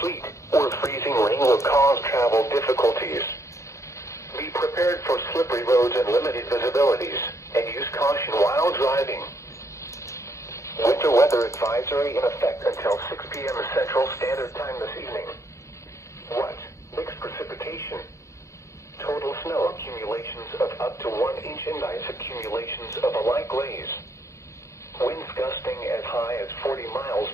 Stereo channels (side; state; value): right; late; 0.14 ms